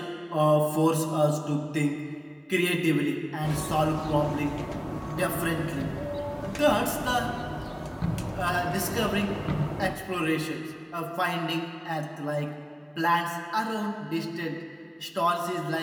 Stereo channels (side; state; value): both; identical; correlation 1.00